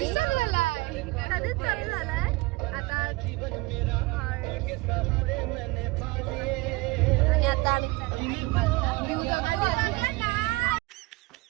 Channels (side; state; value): left; quieter; 22.9 dB